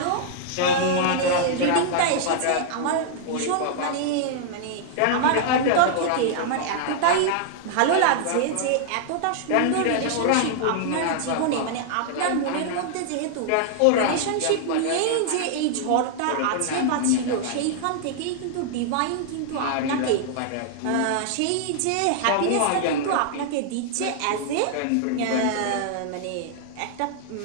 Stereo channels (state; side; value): different; both; correlation -0.01